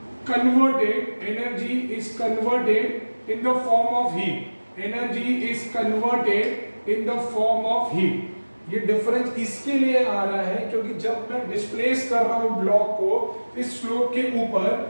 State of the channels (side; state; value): both; inverted; correlation -1.00